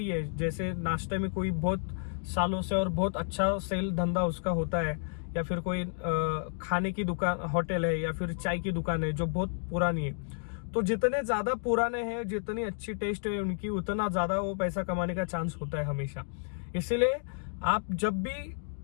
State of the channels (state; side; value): silent; right; digital silence